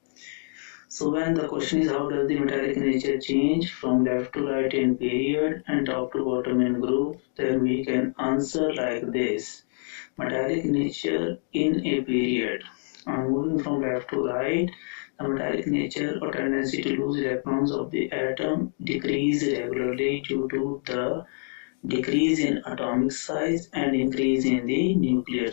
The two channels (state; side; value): silent; right; 55 dB below the other